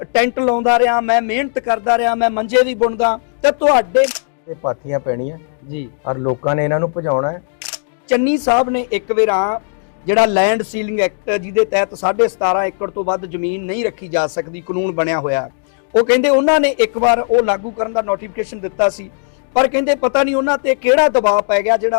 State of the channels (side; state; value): right; silent; digital silence